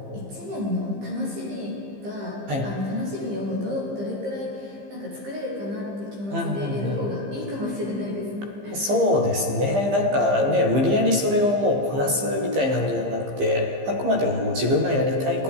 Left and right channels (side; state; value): left; late; 15 ms